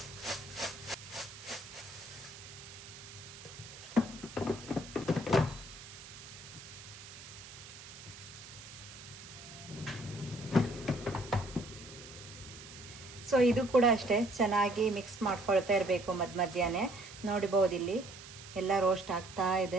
ಸೊ ಇದು ಕೂಡ ಅಷ್ಟೇ, ಚೆನ್ನಾಗಿ ಮಿಕ್ಸ್ ಮಾಡ್ಕೊಳ್ತಾ ಇರಬೇಕು ಮಧ್ಯಾಹ್ನ. ನೋಡ್ಬೋದು ಇಲ್ಲಿ ಎಲ್ಲ ರೋಸ್ಟ್ ಆಗ್ತಾ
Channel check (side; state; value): right; noise; hiss, 15 dB below the sound